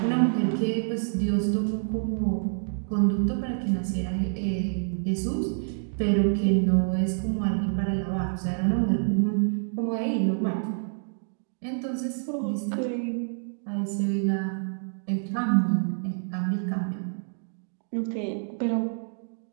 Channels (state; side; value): silent; left; digital silence